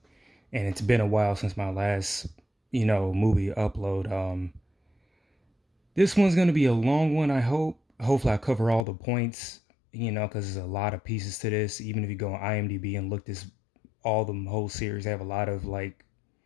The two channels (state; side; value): drops out; right; at 8.8 s